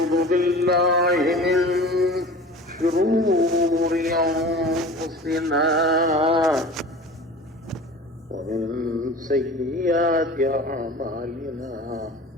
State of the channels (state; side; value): normal; both; correlation 0.39